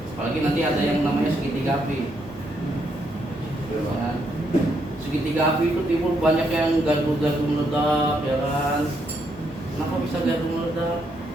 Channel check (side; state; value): both; normal; correlation 0.76